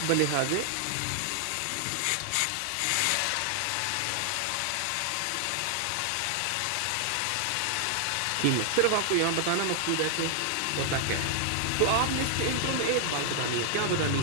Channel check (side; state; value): both; different; correlation 0.00